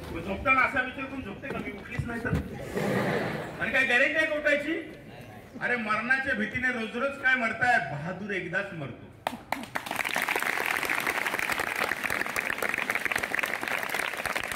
झोपताना असा विचार करून झोपते का मी उठलीच नाही तर? आणि काय गॅरेंटी आहे उठायची? अरे मरणाच्या भीतीने रोज रोज काय मरताय? बहादूर एकदाच मरतो.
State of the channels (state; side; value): identical; both; correlation 1.00